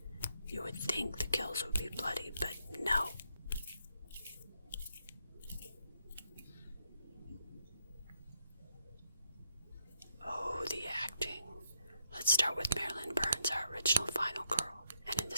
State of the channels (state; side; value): inverted; both; correlation -0.77